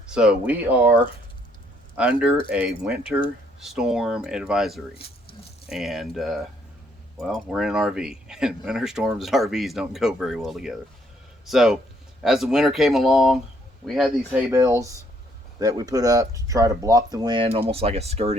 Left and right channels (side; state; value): both; normal; correlation 0.68